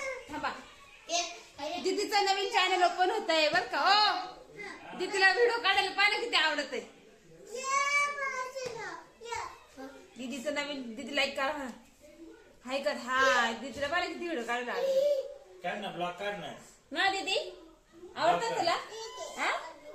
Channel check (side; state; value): both; identical; correlation 1.00